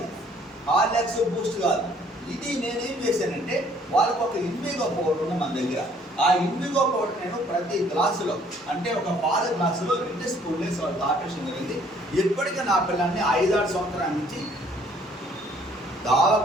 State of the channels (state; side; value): normal; both; correlation 0.60